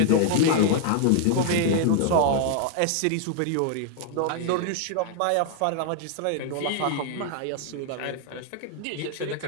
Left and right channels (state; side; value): different; both; correlation 0.00